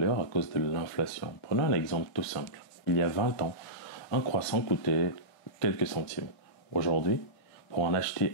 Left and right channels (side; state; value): right; late; 1.6 ms